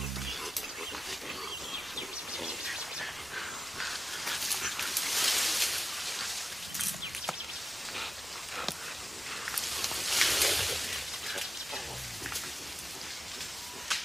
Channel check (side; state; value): both; normal; correlation 0.93